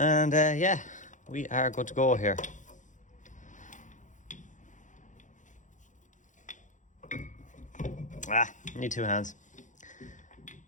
yeah, we are good to go here. Need two hands.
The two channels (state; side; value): late; right; 0.36 ms